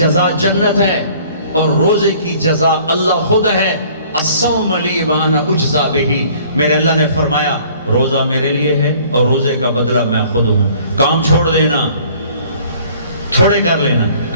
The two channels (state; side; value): inverted; both; correlation -0.54